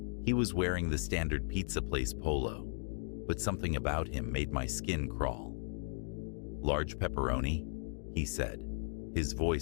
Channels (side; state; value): right; silent; 54 dB below the other